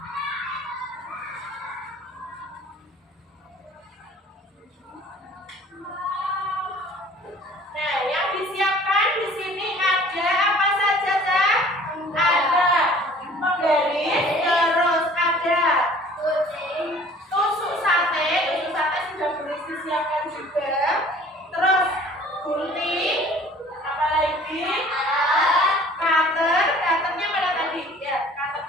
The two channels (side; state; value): both; normal; correlation 0.50